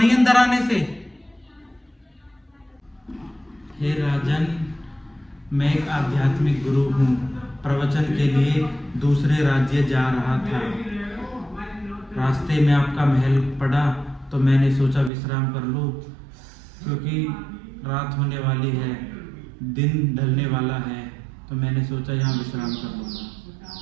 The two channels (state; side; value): drops out; left; at 15.1 s